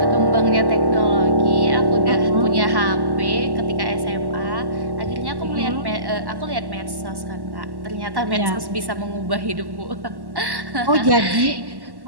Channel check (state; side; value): late; left; 1.1 ms